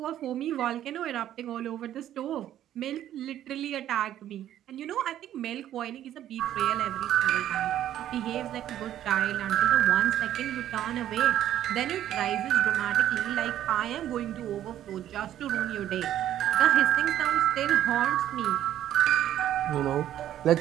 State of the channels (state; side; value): quieter; left; 11.8 dB